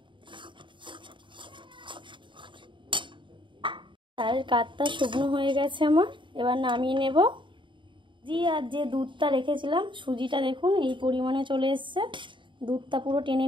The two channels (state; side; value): late; left; 0.23 ms